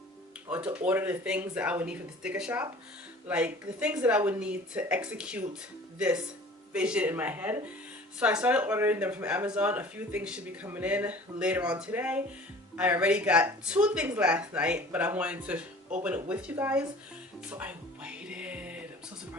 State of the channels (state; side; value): normal; both; correlation 0.46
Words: or to order the things that I would need for the sticker shop, like the things that I would need to execute this vision in my head. So I started ordering them from Amazon. A few things should be coming in later on today. I already got 2 things last night, but I wanted to open it with you guys, so I waited. I'm so